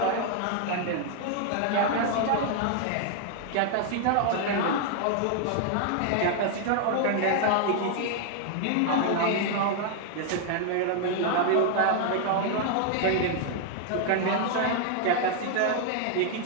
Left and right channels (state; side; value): different; both; correlation 0.00